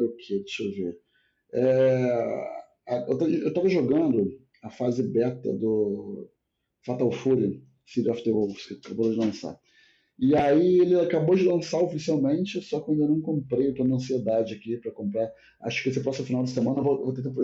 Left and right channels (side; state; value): both; identical; correlation 1.00